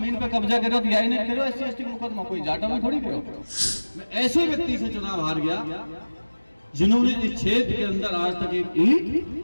पे कब्जा करो तो यही नहीं करो SC/ST मुकदमा, कोई जाटा में थोड़ी करो। मैं ऐसे व्यक्ति से चुनाव हार गया जिन्होंने इस क्षेत्र के अंदर आज तक एक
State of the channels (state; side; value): inverted; both; correlation -1.00